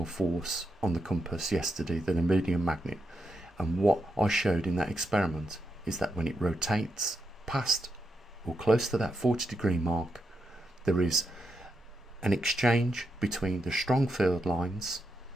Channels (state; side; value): normal; both; correlation 0.84